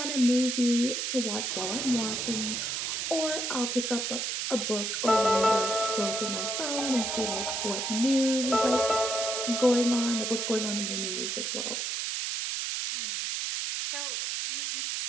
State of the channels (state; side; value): noise; right; hiss, 1 dB below the sound